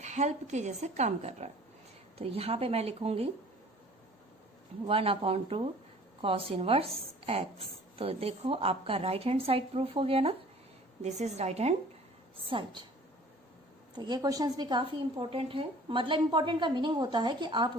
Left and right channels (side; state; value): both; normal; correlation 0.49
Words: हेल्प के जैसे काम कर रहा है। तो यहां पे मैं लिखूंगी 1 अपॉन 2 कॉस इनवर्स एक्स। तो देखो आपका राइट हैंड साइड प्रूफ हो गया ना, this is right hand side. तो ये क्वेश्चंस भी काफी इंपॉर्टेंट है, मतलब इंपॉर्टेंट का मीनिंग होता है कि आप